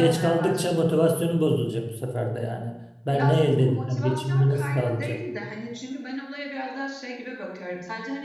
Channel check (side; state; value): both; identical; correlation 1.00